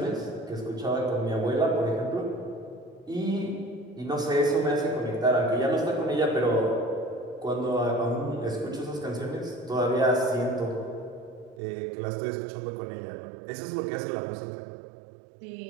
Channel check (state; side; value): drops out; left; at 11.6 s